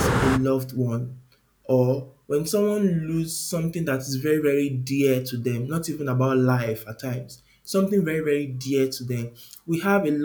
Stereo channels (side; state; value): both; identical; correlation 1.00